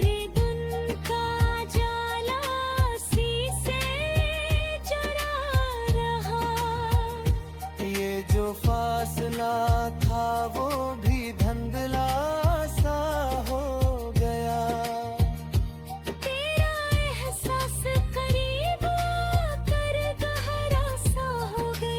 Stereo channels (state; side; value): identical; both; correlation 1.00